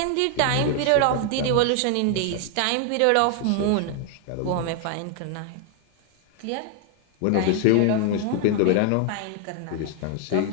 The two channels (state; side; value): different; both; correlation 0.00